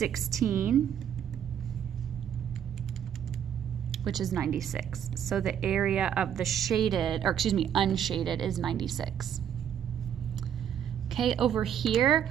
which is 96. So the area of the shaded, or excuse me, unshaded is 96. Okay, over here,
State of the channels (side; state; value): left; quieter; 9.2 dB